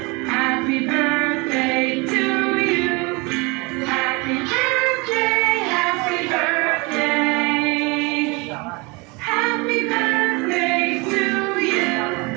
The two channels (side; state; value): left; quieter; 27.4 dB